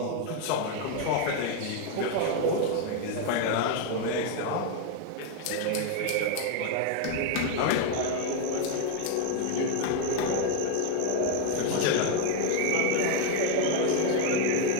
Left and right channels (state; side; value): different; both; correlation 0.01